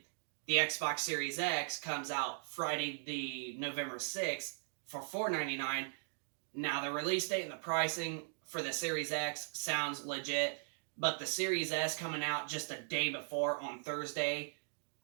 the Xbox Series X comes out Friday the November 6th for $499. Now the release date and the pricing for the Series X sounds legit, but the Series S coming out just a day before on Thursday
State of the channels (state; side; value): silent; left; digital silence